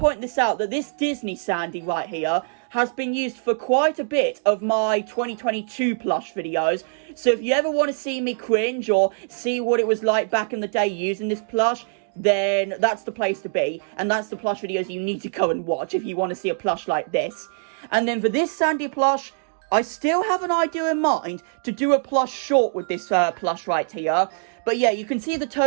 this out that this Disney Sandy right here has been used for quite a bit of my 2022 plush videos. So if you ever want to see me cringe or see what it was like back in the day using this plush, then that's the place to be. And that's the plush videos you need to go and watch if you want to see a plush like this. And then for this Sandy plush, I still have an idea in mind to do a plush short with this plush right here. But yeah, you can see the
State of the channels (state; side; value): silent; left; digital silence